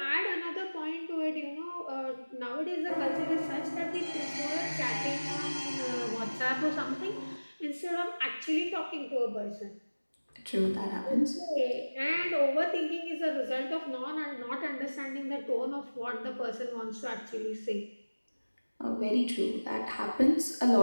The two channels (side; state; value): both; inverted; correlation -1.00